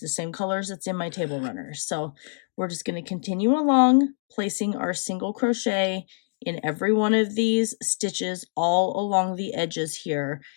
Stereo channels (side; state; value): right; silent; digital silence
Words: the same colors that's in my table runner. So we're just going to continue along, placing our single crochet in every one of these stitches all along the edges here.